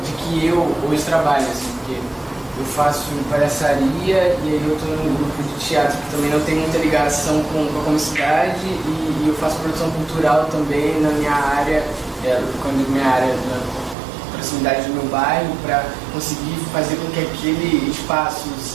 de que eu hoje trabalho, assim, porque eu faço palhaçaria e aí eu estou num grupo de teatro que também não tem muita ligação com a comunicidade e eu faço produção cultural também na minha área, quando eu digo minha área, na proximidade do meu bairro, para conseguir fazer com que aquele espaço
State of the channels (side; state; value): left; drops out; at 14.0 s